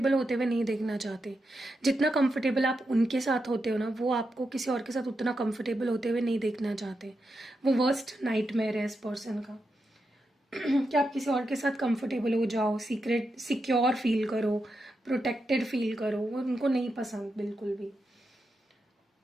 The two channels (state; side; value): normal; both; correlation 0.86